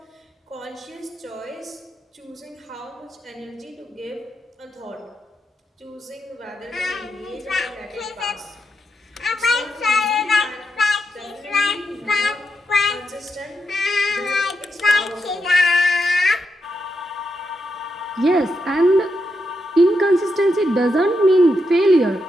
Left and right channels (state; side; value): normal; both; correlation 0.84